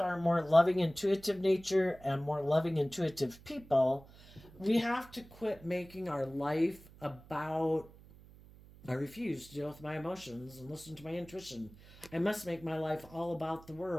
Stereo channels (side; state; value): right; noise; hum, 21 dB below the sound